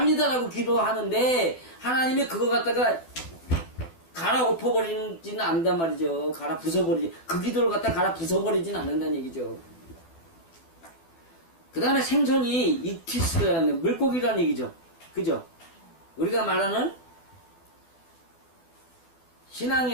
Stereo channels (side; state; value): right; late; 12 ms